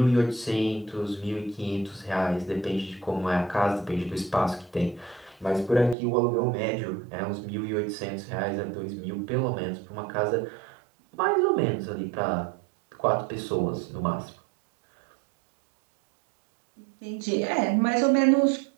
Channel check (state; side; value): drops out; left; at 6.0 s